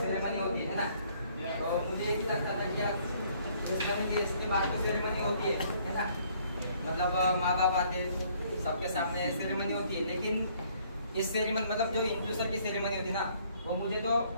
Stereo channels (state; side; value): inverted; both; correlation -0.63